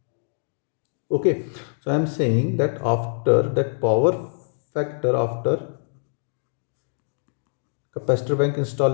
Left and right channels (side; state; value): right; silent; digital silence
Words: Okay, so I am saying that after that power factor, after capacitor bank